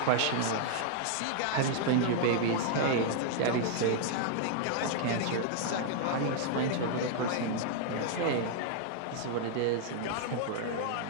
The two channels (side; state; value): both; different; correlation -0.01